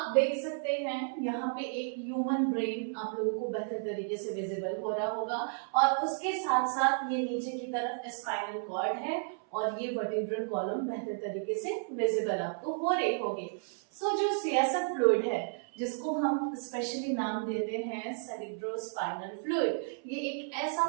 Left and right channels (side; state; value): left; silent; 56 dB below the other